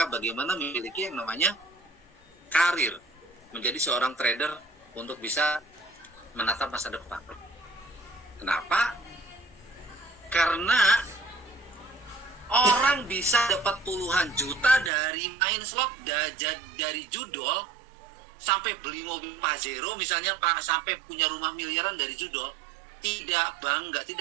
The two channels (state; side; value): drops out; left; at 14.9 s